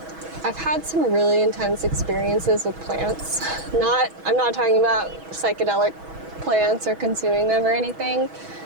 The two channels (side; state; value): left; late; 6.2 ms